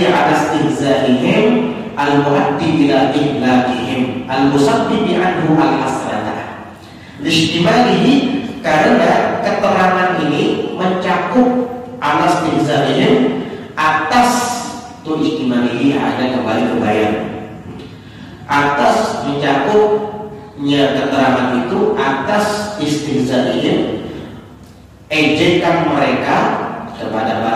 ala istihza'ihim al-mu'addi ila ihlakihim al-musabbibi anhu al-hasratah. Lishtimalihi, karena keterangan ini mencakup ala istihza'ihim, atas tu istimalihi ada kembali ke bayan, atas mencakupnya keterangan itu atas istihza'ihim, ejekan mereka kepada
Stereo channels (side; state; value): both; identical; correlation 1.00